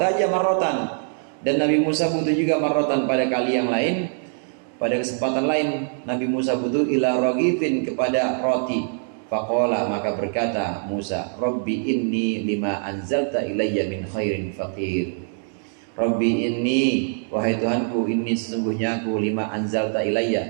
marrotan, dan Nabi Musa butuh juga marrotan pada kali yang lain, pada kesempatan lain Nabi Musa butuh ila ragifin, kepada roti. Faqala, maka berkata Musa, Rabbi inni lima anzalta ilayya min khairin faqir. Rabbi inni, wahai Tuhanku, inni sesungguhnya aku, lima anzalta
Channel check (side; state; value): left; silent; 63 dB below the other